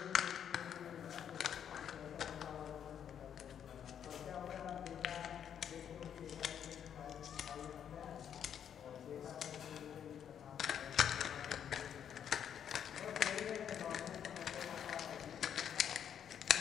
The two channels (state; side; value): quieter; right; 8.8 dB